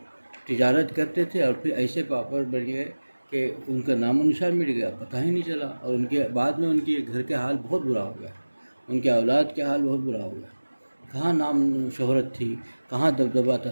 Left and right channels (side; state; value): both; inverted; correlation -1.00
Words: تجارت کرتے تھے اور پھر ایسے پاپڑ بن گئے کہ ان کا نام و نشان مٹ گیا، پتہ ہی نہیں چلا، اور ان کے بعد میں ان کے گھر کے حال بہت برا ہو گیا، ان کے اولاد کے حال بہت برا ہو گیا۔ کہاں نام شہرت تھی، کہاں دبدبہ تھا،